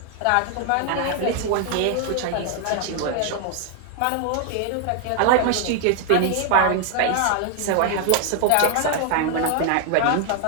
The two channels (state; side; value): different; both; correlation 0.00